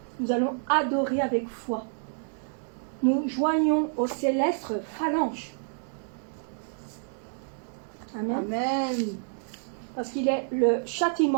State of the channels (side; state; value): left; silent; 59 dB below the other